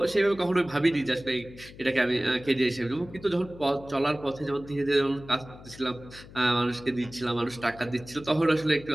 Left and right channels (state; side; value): noise; left; hum, 18 dB below the sound